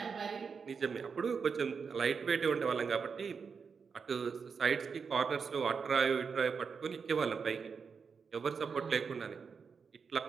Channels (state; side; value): quieter; left; 5.7 dB